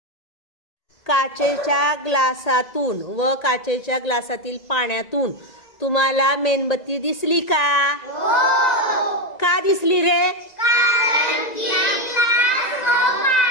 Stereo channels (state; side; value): late; right; 2.0 ms